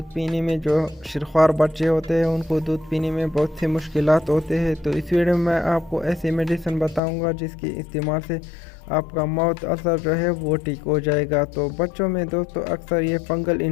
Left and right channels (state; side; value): drops out; right; at 7.0 s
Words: पीने में जो शिरख्वार बच्चे होते हैं उनको दूध पीने में बहुत सी मुश्किलात होते हैं। तो इस वीडियो में मैं आपको ऐसी मेडिसिन बताऊंगा जिसके इस्तेमाल से आपका माउथ अल्सर जो है वो ठीक हो जाएगा। तो बच्चों में दोस्तों अक्सर ये फंगल